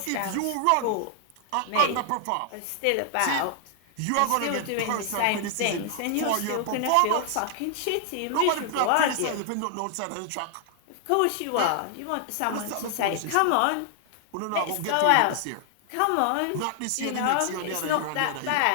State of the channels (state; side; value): different; both; correlation 0.00